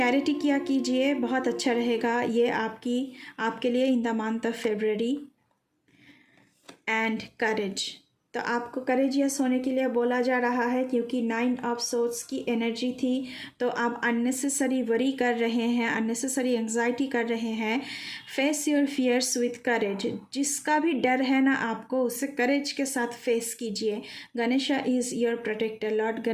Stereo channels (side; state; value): both; identical; correlation 1.00